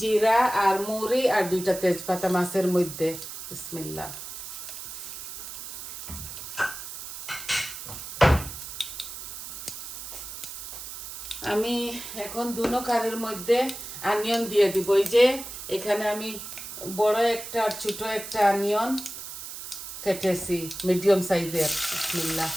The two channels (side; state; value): right; noise; hiss, 9 dB below the sound